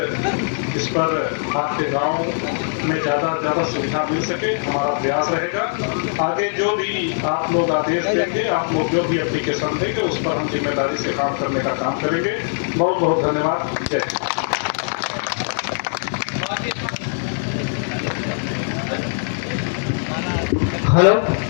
इस पर आपके गांव में ज़्यादा से ज़्यादा सुविधा मिल सके, हमारा प्रयास रहेगा। आगे जो भी आप लोग आदेश देंगे, आप लोग जो भी एप्लीकेशन देंगे, उस पर हम जिम्मेदारी से काम करने का काम करेंगे। बहुत बहुत धन्यवाद। जय हिंद। हेलो,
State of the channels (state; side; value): silent; right; digital silence